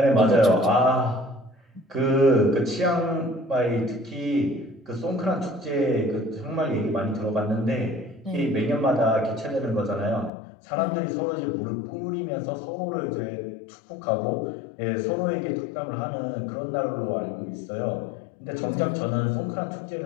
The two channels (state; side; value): drops out; right; at 10.3 s